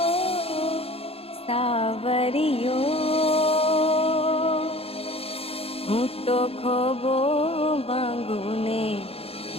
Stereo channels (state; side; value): late; right; 0.28 ms